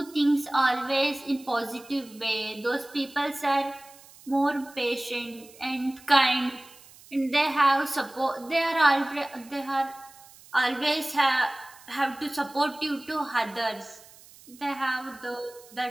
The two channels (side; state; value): right; noise; hiss, 23 dB below the sound